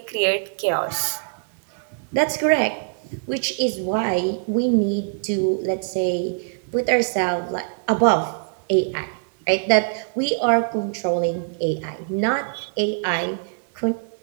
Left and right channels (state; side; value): silent; left; digital silence